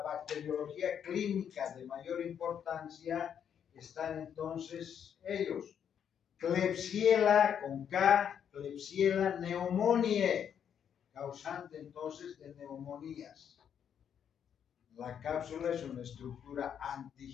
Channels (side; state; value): right; quieter; 8.4 dB